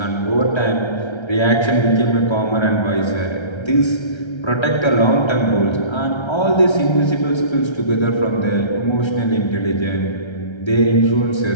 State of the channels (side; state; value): right; late; 1.3 ms